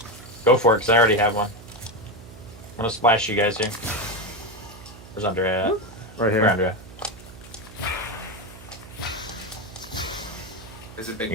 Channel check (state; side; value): noise; right; hum, 18 dB below the sound